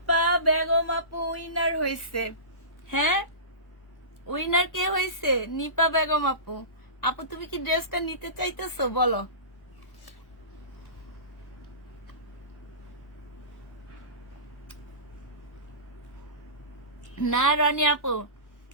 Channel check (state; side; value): late; right; 1.1 ms